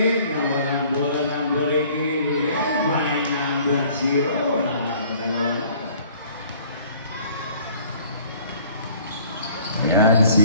Nawalan bola number 18, yes, by number 0. Dalawa na. Ayan,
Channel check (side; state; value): both; inverted; correlation -0.54